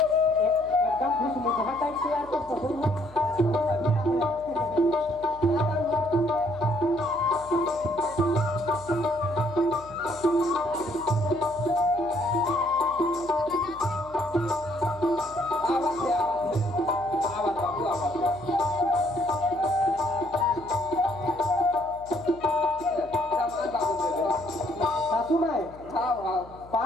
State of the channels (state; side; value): noise; left; hum, 21 dB below the sound